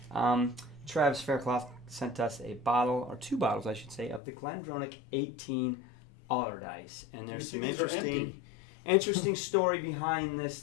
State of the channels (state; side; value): drops out; right; at 4.2 s